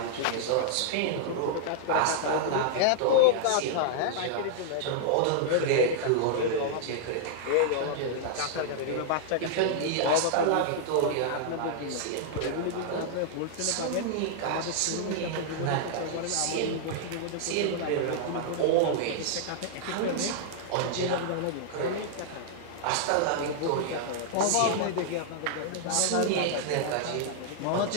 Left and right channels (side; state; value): both; different; correlation -0.01